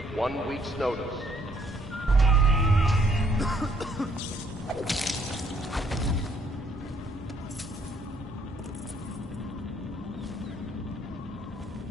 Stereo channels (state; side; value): normal; both; correlation 0.67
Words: 1 week's notice.